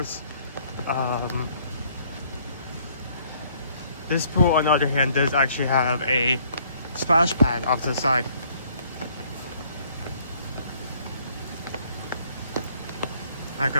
This pool, on the other hand, does actually have a splash pad off to the side. Not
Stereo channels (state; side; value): inverted; both; correlation -0.63